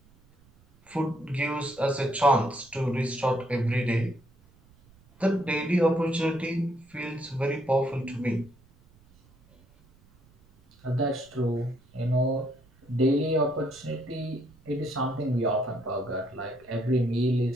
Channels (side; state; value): right; noise; rumble, 29 dB below the sound